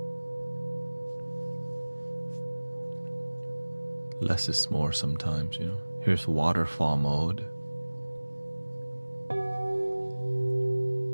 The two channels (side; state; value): both; inverted; correlation -1.00